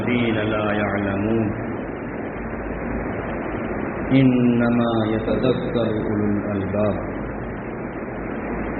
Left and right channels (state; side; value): identical; both; correlation 1.00